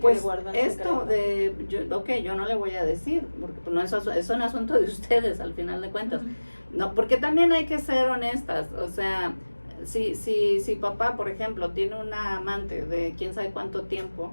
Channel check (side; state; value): both; inverted; correlation -1.00